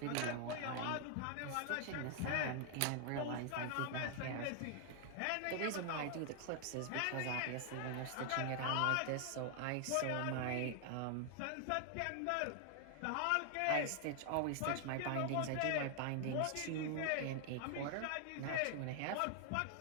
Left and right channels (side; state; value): both; different; correlation 0.00